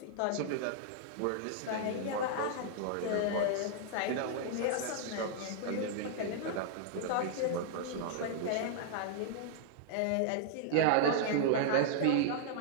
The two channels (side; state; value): both; different; correlation -0.01